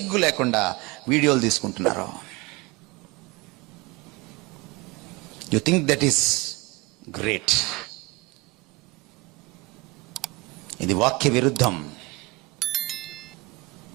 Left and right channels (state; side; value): quieter; left; 23.5 dB